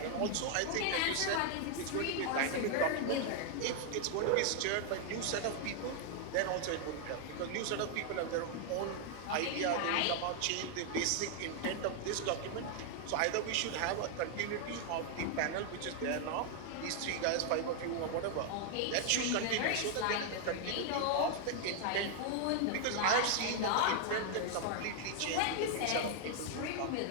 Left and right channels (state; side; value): different; both; correlation 0.00